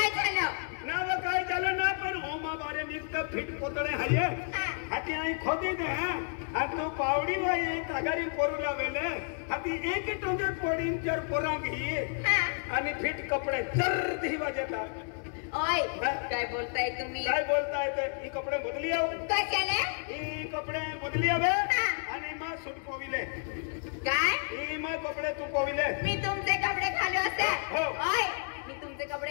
झालं ना व काय झालं ना पण होमा बारे निघत फिट पोतळे हाये हाती आई खोदी दे हा तू पावडी वाय तगारी पोरूला वेले हाती एक टोंगे पोडीन चर पोरांगी आणि फिट कपडे चर दिवा देता ओय काय बोलताय तुम्ही काय बोलताय ते ही कपडे बदली आव कशाले ही कपडे बदली आवे आणि मा सूट पोविले काय ही मा कपडे तू पोविले मी तुमचे कपडे घालू असे हो. ओय मी तुमचे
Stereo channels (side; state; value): right; silent; 57 dB below the other